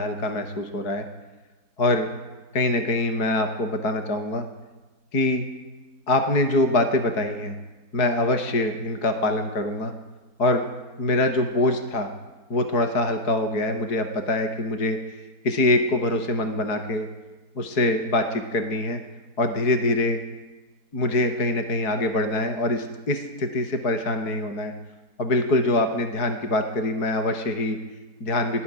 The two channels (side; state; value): right; late; 4.6 ms